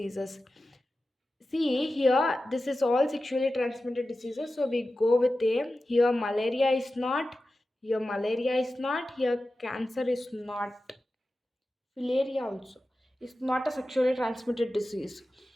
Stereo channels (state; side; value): normal; both; correlation 0.93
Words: See here, this is all sexually transmitted diseases. So we go with A. Here, malaria is not. Here, malaria is not. Here, cancer is not. Filaria also is not a sexually transmitted disease.